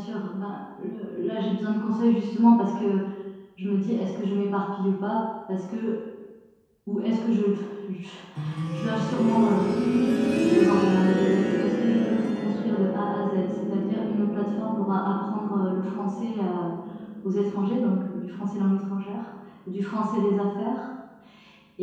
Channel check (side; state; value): both; identical; correlation 1.00